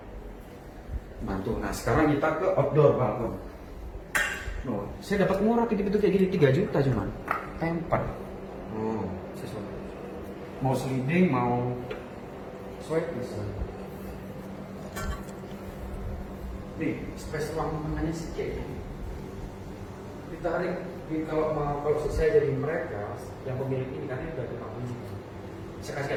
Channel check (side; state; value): both; identical; correlation 1.00